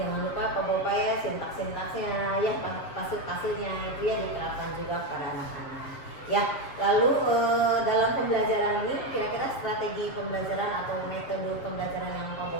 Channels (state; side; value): late; right; 7.6 ms